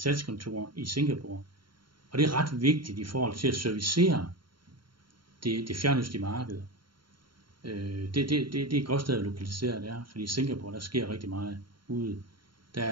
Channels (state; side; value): late; left; 0.73 ms